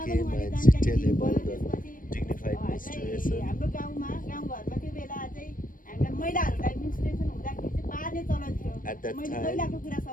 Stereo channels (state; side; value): late; right; 0.40 ms